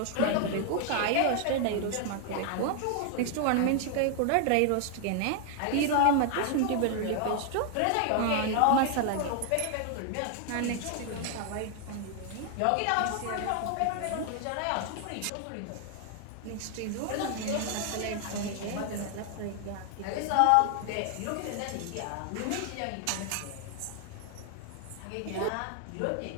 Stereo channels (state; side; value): different; both; correlation 0.00